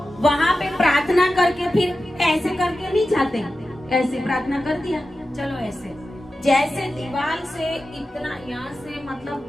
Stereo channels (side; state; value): both; normal; correlation 0.93